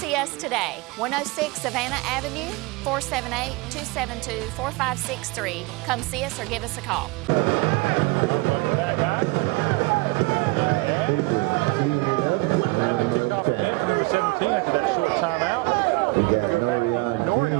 us today, 106 Savannah Avenue, 478-272-4563. Come see us or give us a call. All right, welcome back, guys. And gals. We're going to have the kickoff again for number 17 after that short timeout. We're going to go back deep to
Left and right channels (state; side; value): quieter; left; 24.6 dB